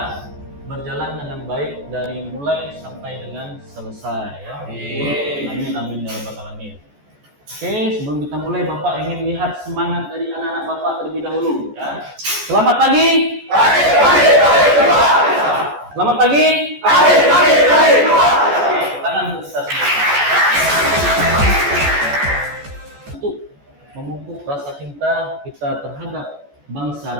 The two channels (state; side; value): late; left; 14 ms